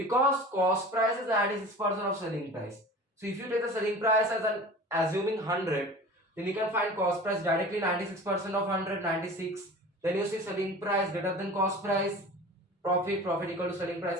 cost price is 96% of selling price. So if you take the selling price as an assuming 100, then you can find cost price directly 96% of 100, 96. Then you see selling price greater than cost price. Profit equal to selling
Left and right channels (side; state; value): both; normal; correlation 0.39